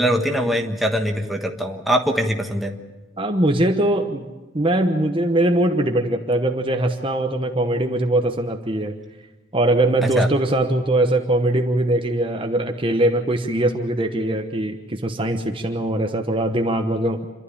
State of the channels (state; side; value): normal; both; correlation 0.60